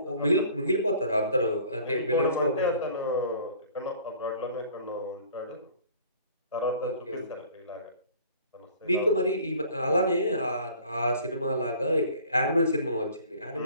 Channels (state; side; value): inverted; both; correlation -0.50